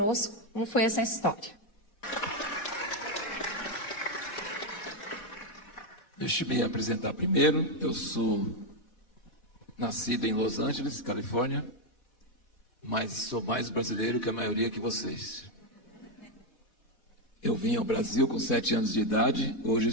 como foi essa história. Deixa eu me apresentar primeiro. Eu sou nascido em Los Angeles, Califórnia, mas sou mais brasileiro que a maioria de vocês. Eu vim ao Brasil com 7 anos de idade, hoje eu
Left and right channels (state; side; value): late; right; 4.1 ms